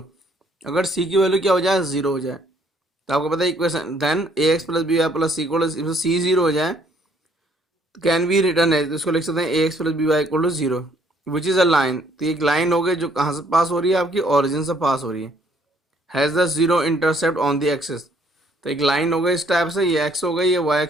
अगर सी की वैल्यू क्या हो जाए, जीरो हो जाए, तो आपको पता है equation then A x plus B Y plus C equal to, C zero हो जाए तो कैन बी रिटर्न है, तो इसको लिख सकते हैं ए x plus B Y equal to zero which is a line. तो एक लाइन हो गई जो कहाँ से पास हो रही है, आपकी ओरिजिन से पास हो रही है, has the zero intercept on the axis. तो एक लाइन हो गई इस टाइप से, ये एक्स हो गई, ये वाई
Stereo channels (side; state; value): both; normal; correlation 0.64